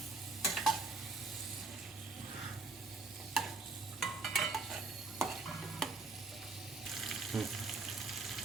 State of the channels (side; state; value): left; quieter; 3.8 dB